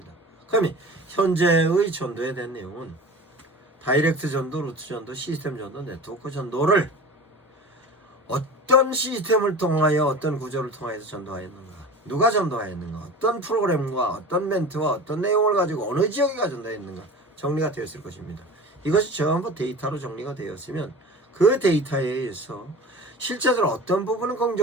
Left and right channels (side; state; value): both; normal; correlation 0.36